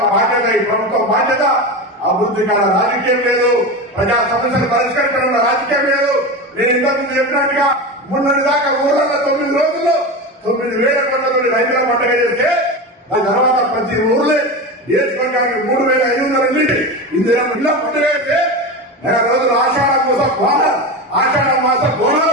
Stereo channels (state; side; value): normal; both; correlation 0.23